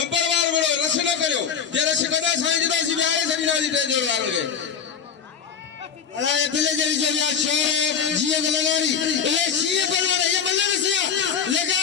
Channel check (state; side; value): quieter; right; 7.1 dB